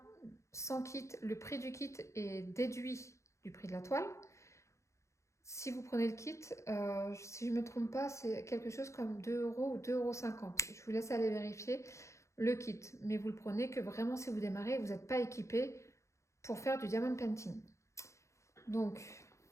sans kit, le prix du kit est déduit du prix de la toile. Si vous prenez le kit, si je ne me trompe pas, c'est quelque chose comme 2 € ou 2,50 €. Je vous laisse aller vérifier le kit. Mais vous le prenez que vraiment si vous démarrez et vous n'êtes pas équipé pour faire du diamond painting. Donc,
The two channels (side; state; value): right; late; 0.14 ms